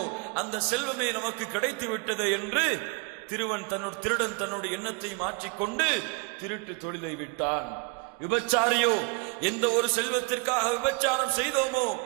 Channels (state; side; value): quieter; left; 30.2 dB